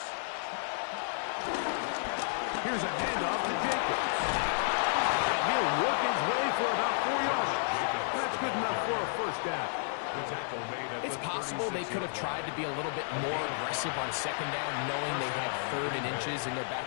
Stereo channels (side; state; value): right; silent; 57 dB below the other